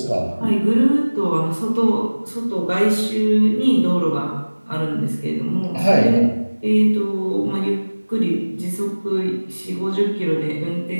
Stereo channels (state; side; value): inverted; both; correlation -1.00